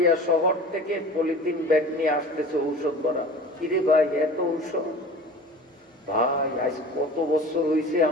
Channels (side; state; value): both; normal; correlation 0.39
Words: শহর থেকে পলিথিন ব্যাগ নিয়ে আসতেছে ঔষধ ভরা? কিরে ভাই এত ঔষধ? ভাই আজ কত বছর হয়েছে